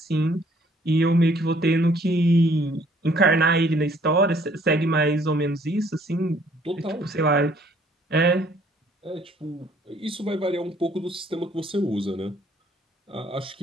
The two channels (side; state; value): both; normal; correlation 0.62